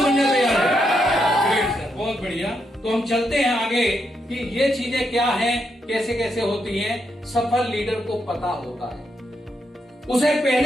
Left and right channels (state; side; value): normal; both; correlation 0.80